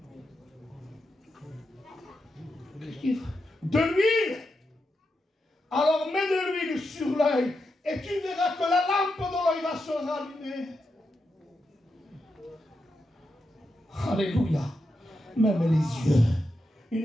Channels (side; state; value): both; normal; correlation 0.86